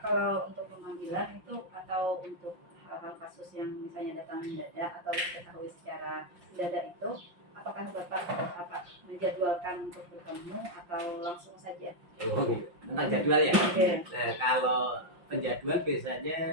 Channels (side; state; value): left; late; 5.7 ms